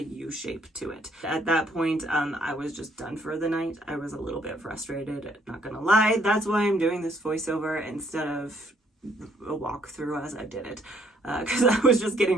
shape to it. At that point, I was just done for the night. I was a little bit frustrated, not gonna lie. That's why I'm doing this voiceover instead of a walkthrough as I did it, because I was just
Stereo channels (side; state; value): both; normal; correlation 0.67